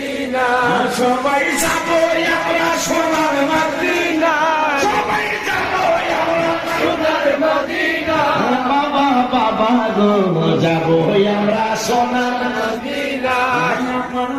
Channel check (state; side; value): identical; both; correlation 1.00